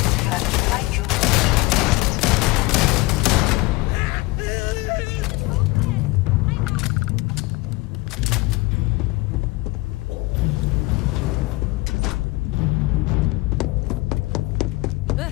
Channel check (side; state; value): right; quieter; 22.0 dB